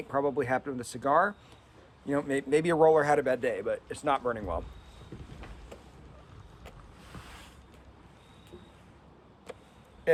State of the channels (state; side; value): identical; both; correlation 1.00